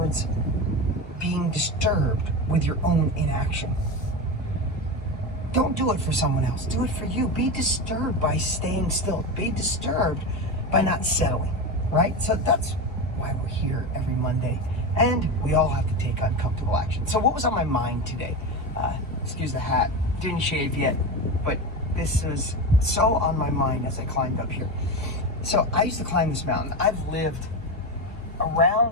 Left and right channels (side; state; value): both; normal; correlation 0.19